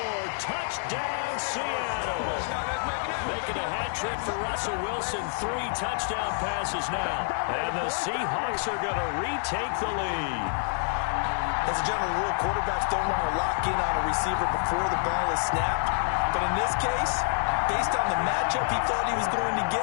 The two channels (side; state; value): right; silent; 60 dB below the other